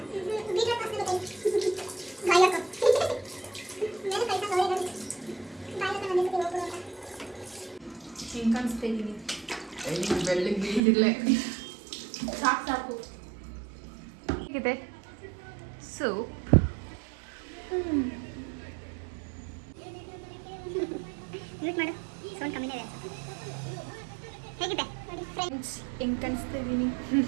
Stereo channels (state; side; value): drops out; left; at 10.8 s